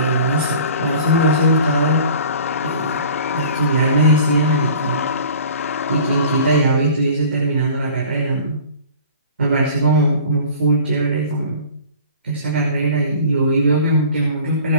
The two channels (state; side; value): inverted; both; correlation -0.45